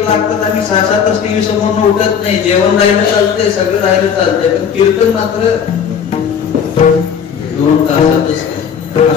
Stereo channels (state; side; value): quieter; right; 7.4 dB